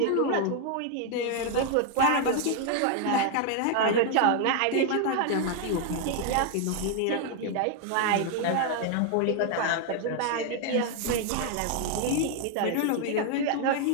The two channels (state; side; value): different; both; correlation 0.00